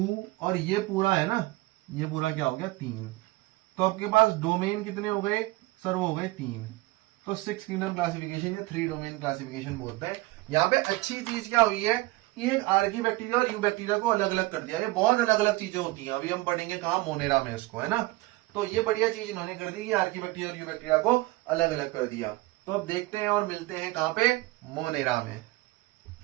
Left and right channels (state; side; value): quieter; left; 20.6 dB